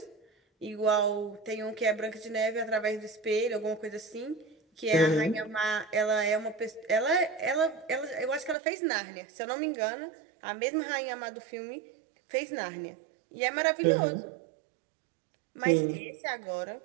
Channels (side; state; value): left; drops out; at 8.6 s